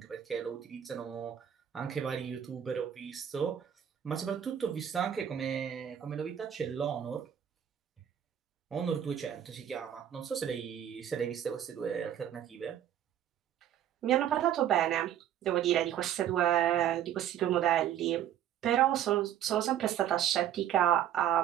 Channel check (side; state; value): left; quieter; 10.3 dB